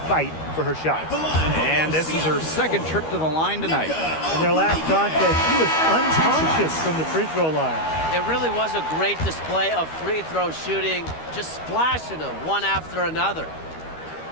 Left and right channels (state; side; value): late; right; 13 ms